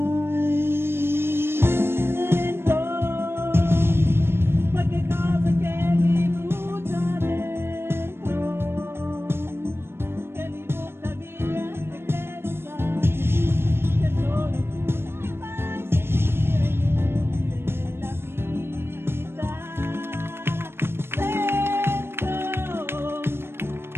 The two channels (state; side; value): late; left; 0.12 ms